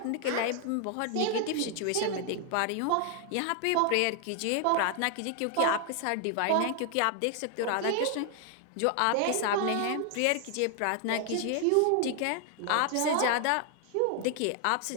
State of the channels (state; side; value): different; both; correlation 0.00